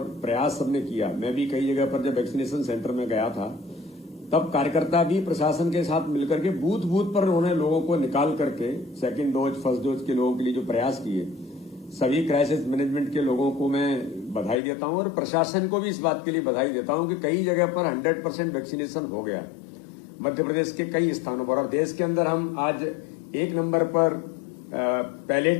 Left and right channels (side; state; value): right; drops out; at 14.6 s